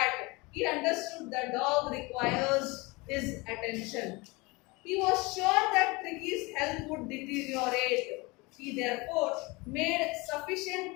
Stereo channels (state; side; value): quieter; right; 25.0 dB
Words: He understood the dog requires his attention. He was sure that Tricky's health would deteriorate. He therefore made sufficient